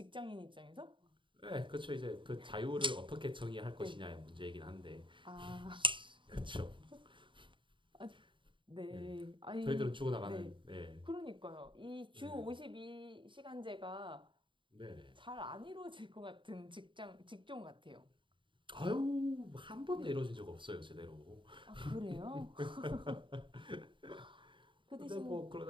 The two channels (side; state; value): left; late; 0.24 ms